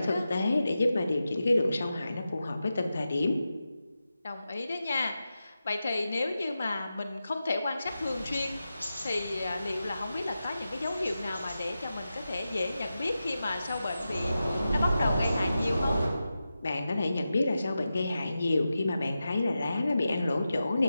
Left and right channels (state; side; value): inverted; both; correlation -0.91